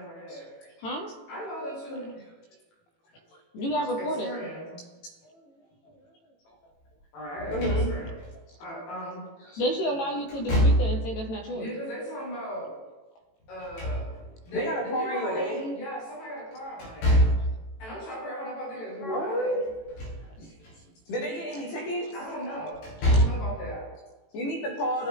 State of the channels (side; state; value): right; late; 18 ms